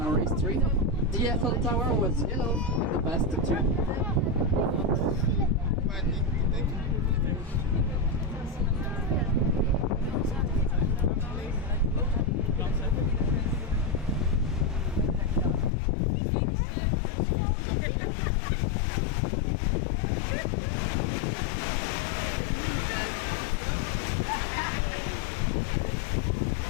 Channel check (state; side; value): drops out; right; at 15.7 s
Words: history. The Eiffel Tower was yellow in the past too.